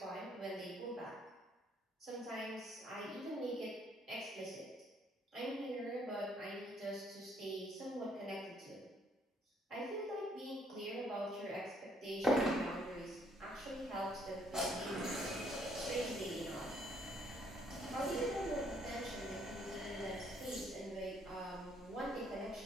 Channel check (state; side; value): normal; both; correlation 0.67